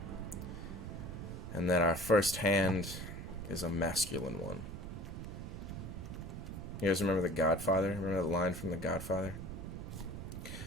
And then our first hand is a masculine one. You guys remember The Godfather? Remember that line from The Godfather?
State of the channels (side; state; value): right; noise; rumble, 8 dB below the sound